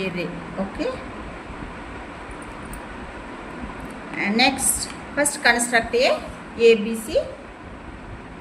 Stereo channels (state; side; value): identical; both; correlation 1.00